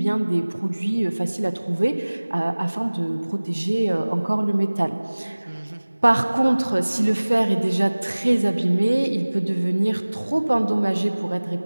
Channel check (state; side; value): inverted; both; correlation -1.00